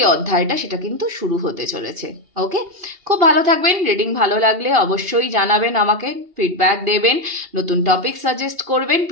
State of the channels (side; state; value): left; late; 2.8 ms